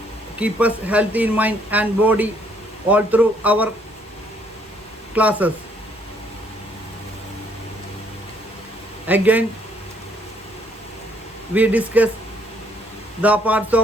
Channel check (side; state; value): both; normal; correlation 0.66